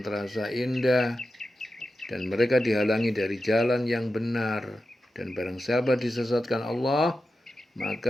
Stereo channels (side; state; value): both; normal; correlation 0.91